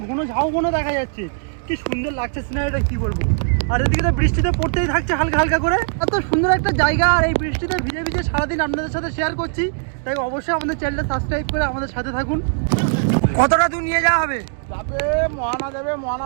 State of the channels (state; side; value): silent; left; digital silence